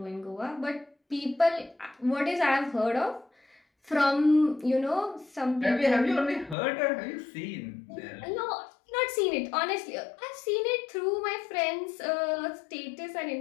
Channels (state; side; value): drops out; right; at 6.6 s